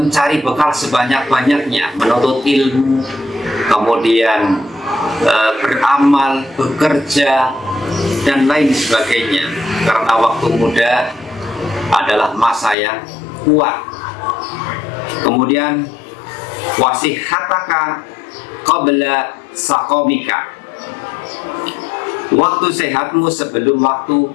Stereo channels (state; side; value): drops out; right; at 12.8 s